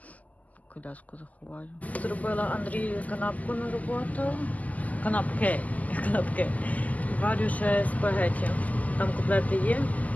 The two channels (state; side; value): late; right; 0.077 ms